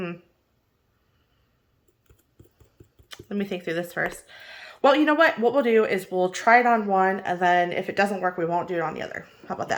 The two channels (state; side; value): identical; both; correlation 1.00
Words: me think through this first. Well, you know what? What we'll do is we'll try it on one, and then if it doesn't work, we won't do it on the other. How about